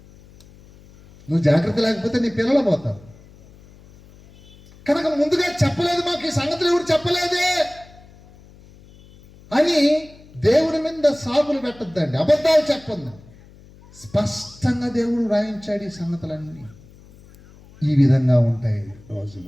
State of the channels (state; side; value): noise; left; hum, 24 dB below the sound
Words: నువ్వు జాగ్రత్త లేకపోతే నీ పిల్లలు పోతారు. కనుక ముందుగా చెప్పలేదు, మాకు ఈ సంగతులు ఎవరు చెప్పలేదే అని దేవుడి మీద సాగులు పెట్టద్దండి, అబద్ధాలు చెప్పండి. స్పష్టంగా దేవుడు రాయించాడు ఈ సంగతులన్నీ ఈ విధంగా ఉంటాయి